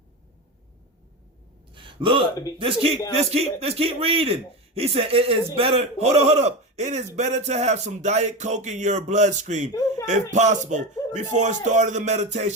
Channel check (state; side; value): normal; both; correlation 0.21